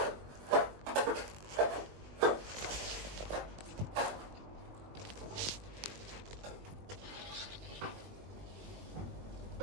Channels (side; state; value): left; late; 20 ms